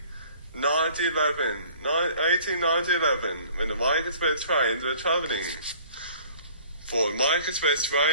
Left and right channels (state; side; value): inverted; both; correlation -0.52